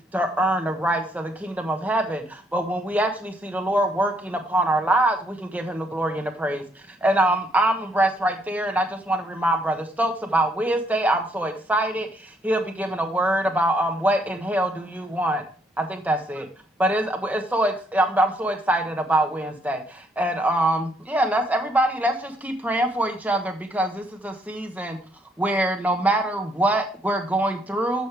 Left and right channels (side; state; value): both; normal; correlation 0.70